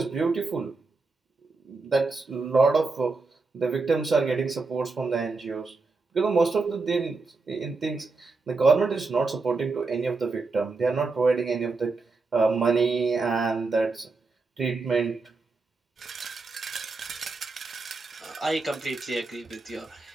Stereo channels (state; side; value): quieter; left; 3.9 dB